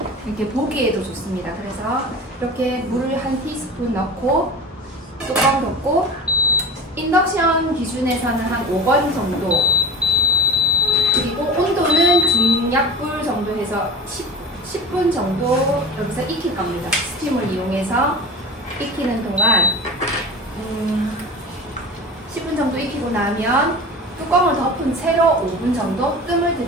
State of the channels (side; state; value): both; normal; correlation 0.33